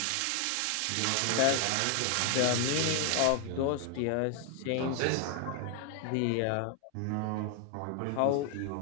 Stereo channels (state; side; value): different; both; correlation 0.00